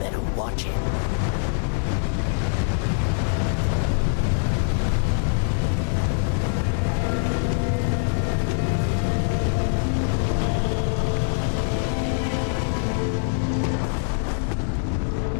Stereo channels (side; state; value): right; silent; digital silence